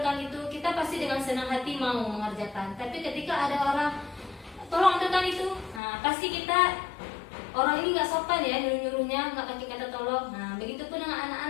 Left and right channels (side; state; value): right; drops out; at 5.8 s